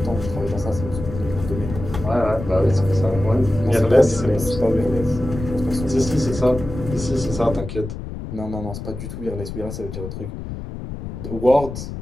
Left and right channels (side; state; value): left; noise; rumble, 9 dB below the sound